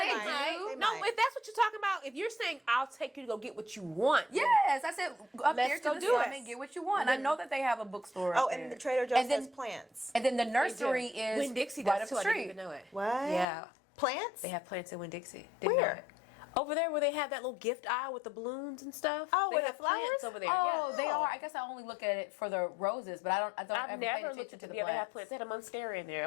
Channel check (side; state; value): right; drops out; at 13.5 s